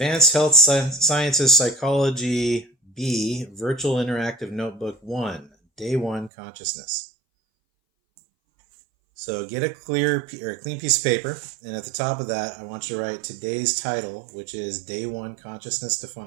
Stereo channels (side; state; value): left; drops out; at 6.3 s